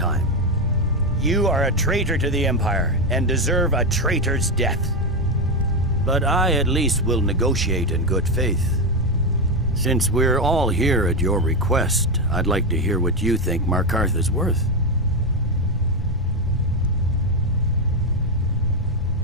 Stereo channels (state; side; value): normal; both; correlation 0.09